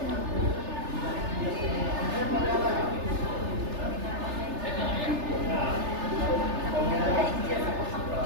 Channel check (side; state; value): left; late; 3.3 ms